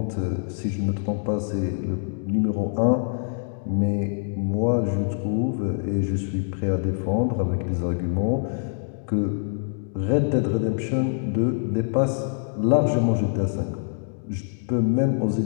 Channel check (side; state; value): right; silent; digital silence